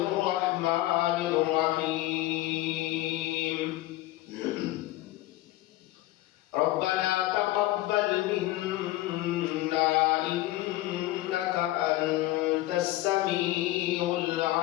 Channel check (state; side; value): quieter; right; 16.7 dB